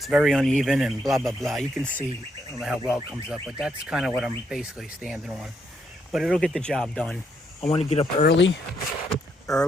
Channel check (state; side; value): normal; both; correlation 0.76